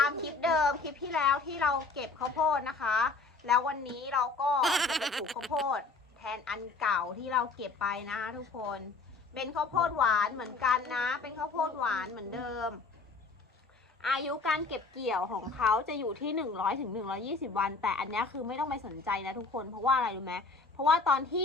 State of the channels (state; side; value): quieter; right; 3.9 dB